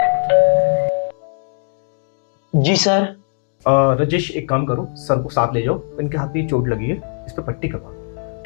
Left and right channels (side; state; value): right; silent; 59 dB below the other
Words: जी सर। राजेश, एक काम करो, सर को साथ ले जाओ, इनके हाथ में चोट लगी है, इस पे पट्टी करवा दो,